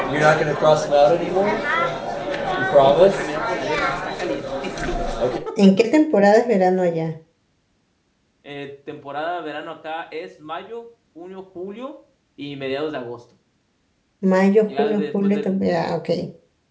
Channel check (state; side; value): identical; both; correlation 1.00